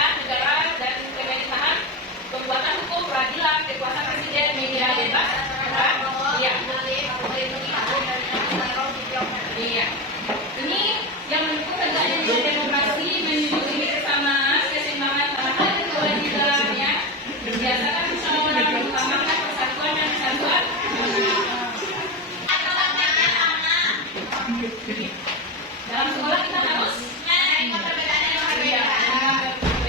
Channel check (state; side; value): normal; both; correlation 0.17